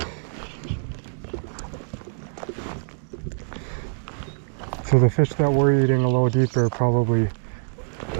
So the fish that we're eating a little deeper are probably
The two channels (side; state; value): left; silent; digital silence